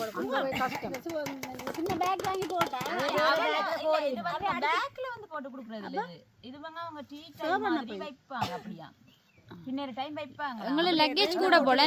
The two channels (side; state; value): both; identical; correlation 1.00